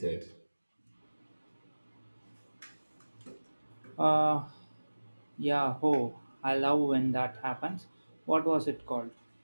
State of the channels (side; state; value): both; inverted; correlation -1.00